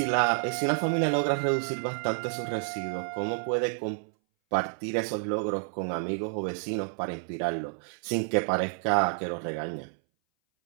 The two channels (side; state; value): left; silent; 58 dB below the other